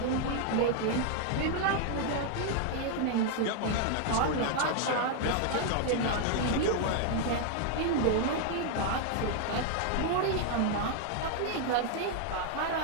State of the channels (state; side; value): different; both; correlation 0.00